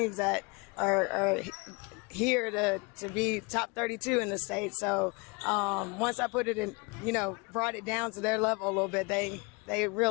that are here to be top 32 in the state. So once I put it in, you know, brought it down to their level a little bit, they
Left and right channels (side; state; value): right; quieter; 29.0 dB